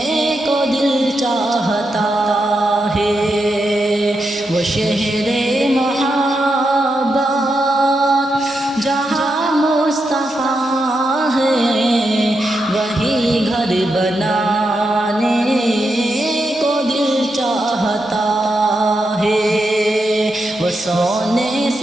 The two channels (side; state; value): both; normal; correlation 0.85